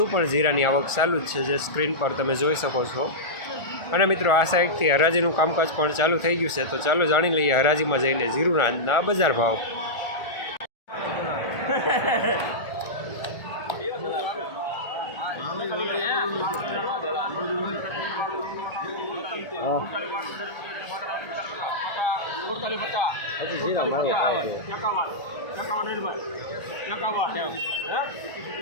પણ જીરાની આવક ચાલુ જ છે, જે સ્ક્રીન પર તમે જોઈ શકો છો. અને મિત્રો, આ સાઈડથી હરાજીનું કામકાજ પણ ચાલુ થઈ ગયું છે, તો ચાલો જાણી લઈએ હરાજીમાં જઈને જીરુના આજના બજાર ભાવ.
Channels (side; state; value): right; late; 1.4 ms